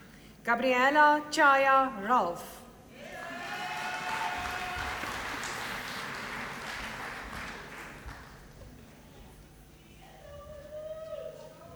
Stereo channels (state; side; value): identical; both; correlation 1.00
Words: Gabriela Chaya Ralph.